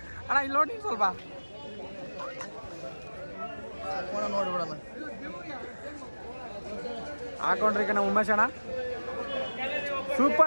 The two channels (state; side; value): inverted; both; correlation -1.00